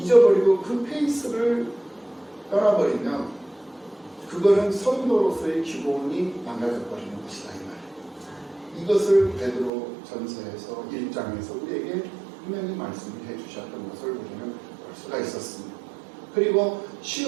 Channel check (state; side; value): drops out; left; at 9.7 s